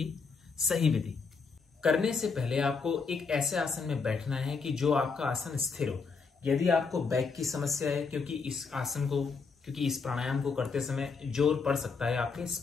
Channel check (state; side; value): quieter; right; 4.9 dB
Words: सही विधि। करने से पहले आपको एक ऐसे आसन में बैठना है कि जो आपका आसन स्थिर हो। यदि आपको बैक की समस्या है, क्योंकि इस प्राणायाम को करते समय जोर पड़ सकता है आपके